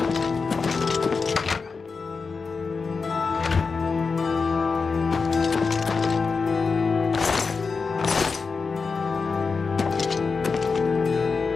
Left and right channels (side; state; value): right; quieter; 4.8 dB